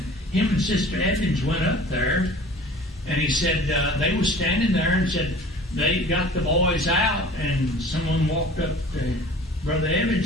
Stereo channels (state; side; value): normal; both; correlation 0.45